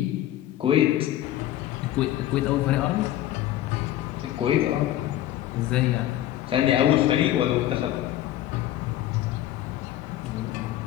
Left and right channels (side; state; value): right; quieter; 13.2 dB